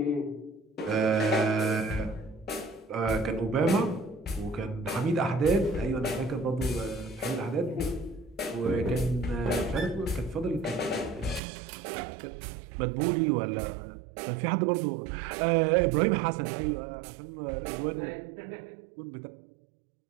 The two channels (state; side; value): drops out; left; at 11.4 s